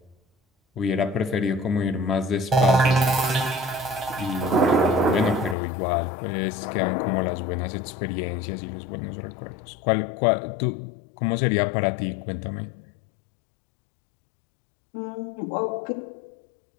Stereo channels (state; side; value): drops out; right; at 5.6 s